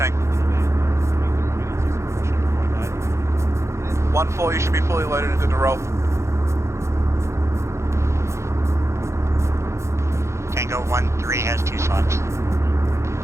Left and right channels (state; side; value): late; left; 0.14 ms